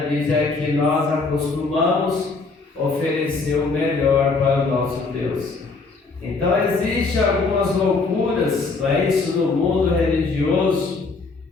diz: é que nós acostumamos oferecer o melhor para o nosso Deus. Então existem algumas loucuras, não é isso, no mundo religioso.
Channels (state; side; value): quieter; right; 4.0 dB